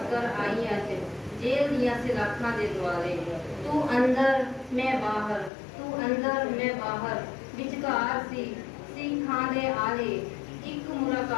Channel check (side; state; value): right; drops out; at 5.5 s